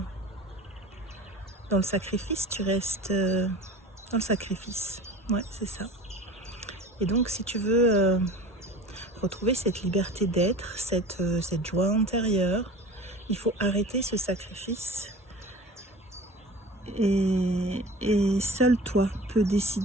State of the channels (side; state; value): both; normal; correlation 0.39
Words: dans le sacrifice, dans le sacrifice. Ouais, c'est ça. Et donc si tu veux retrouver cette liberté d'être, cette joie intérieure, il faut arrêter ce sacrifice. Et seul toi peux